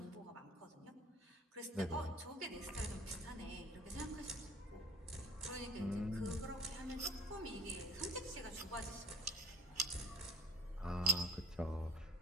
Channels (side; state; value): both; normal; correlation 0.44